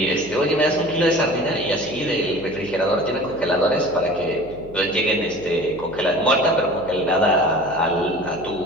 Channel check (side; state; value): right; noise; hum, 17 dB below the sound